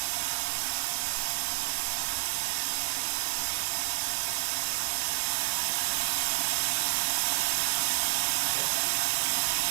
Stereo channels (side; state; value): left; silent; 58 dB below the other